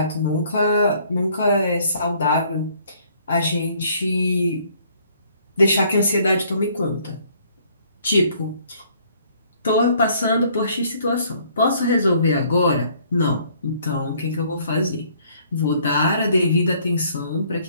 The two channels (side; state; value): both; inverted; correlation -0.62